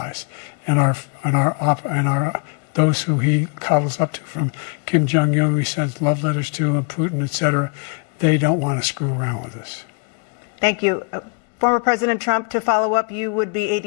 and those who he coddles up to, from Kim Jong-un, who he sends love letters to, and Putin, etc. They don't want to screw around with us. Thank you. Former President Trump, to follow up, you would be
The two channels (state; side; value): quieter; right; 37.8 dB